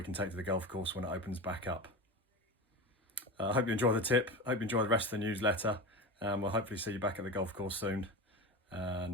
can take to the golf course when it opens back up. I hope you enjoy the tip, hope you enjoy the rest of the newsletter, and we'll hopefully see you back at the golf course soon,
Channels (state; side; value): normal; both; correlation 0.26